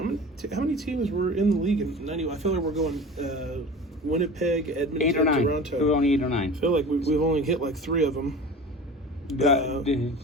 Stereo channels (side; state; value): both; normal; correlation 0.37